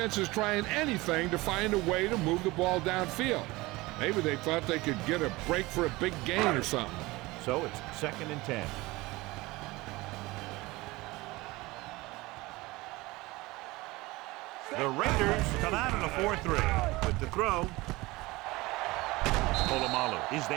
is trying anything to find a way to move the ball downfield. Maybe they thought they could get a break for a big gain or something. So it's 2nd and 10. The Raiders come out in a 4-3 with the throw. Polamalu is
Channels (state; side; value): quieter; left; 21.2 dB